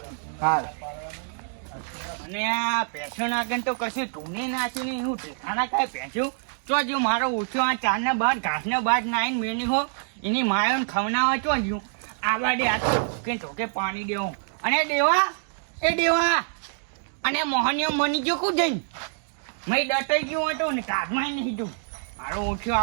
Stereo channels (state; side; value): silent; left; digital silence